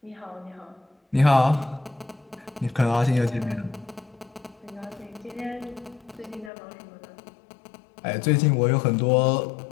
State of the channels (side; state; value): right; drops out; at 6.5 s